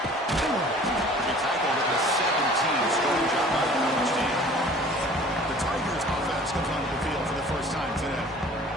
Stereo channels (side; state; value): both; normal; correlation 0.48